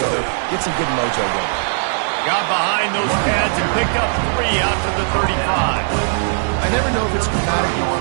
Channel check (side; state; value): left; silent; digital silence